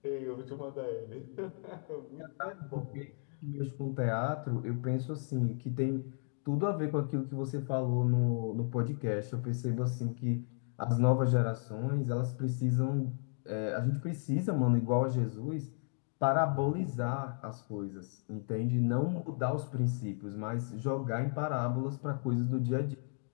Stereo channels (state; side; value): silent; right; 55 dB below the other